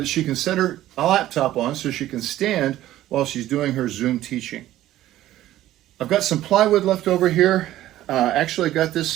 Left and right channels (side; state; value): left; quieter; 14.2 dB